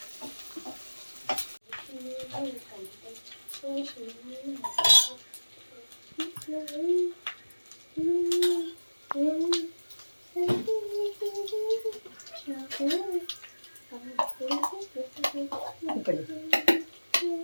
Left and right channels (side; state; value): both; inverted; correlation -1.00